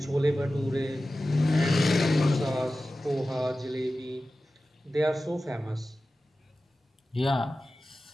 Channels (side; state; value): both; normal; correlation 0.95